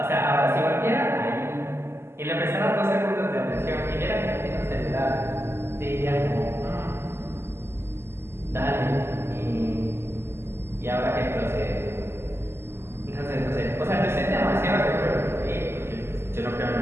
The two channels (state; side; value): late; left; 0.12 ms